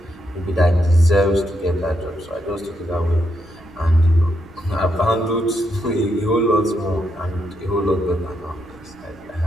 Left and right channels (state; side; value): noise; left; rumble, 25 dB below the sound